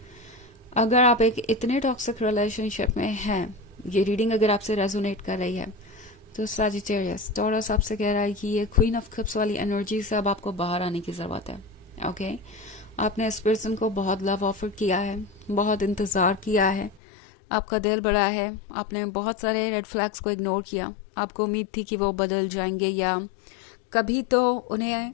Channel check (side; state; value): right; drops out; at 17.0 s